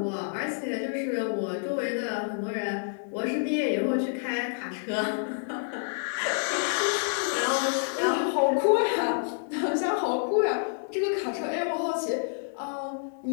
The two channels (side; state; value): right; silent; 58 dB below the other